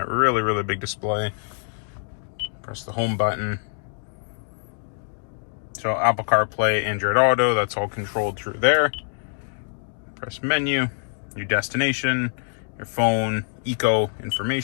really big display. Press the home button. So Apple CarPlay, Android Auto, that's all controlled through there. Press menu, your destination, your phone, eco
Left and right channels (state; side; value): silent; right; 62 dB below the other